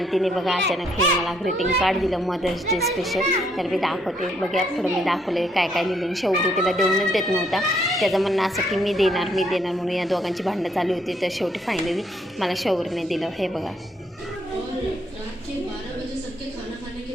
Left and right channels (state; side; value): normal; both; correlation 0.70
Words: तिने बघा अचानक हे मला ग्रीटिंग कार्ड दिलं मदर्स डे स्पेशल. तर मी दाखवते बघा, पुढं मी दाखवले काय काय लिहिलं. शेवटी तिला देऊनच देत नव्हता. त्याचं म्हणणं असं की मी देणार म्हणून या दोघांची भांडणं चालू होती. तर शेवटी फायनली मला शौर्यने दिलं. हे बघा,